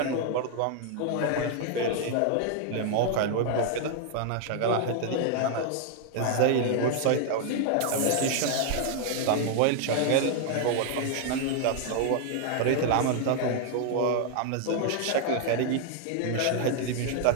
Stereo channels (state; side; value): different; both; correlation 0.00